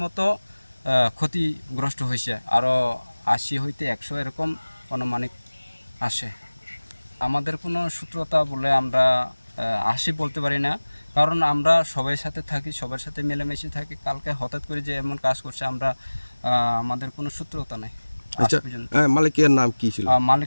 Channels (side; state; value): both; inverted; correlation -1.00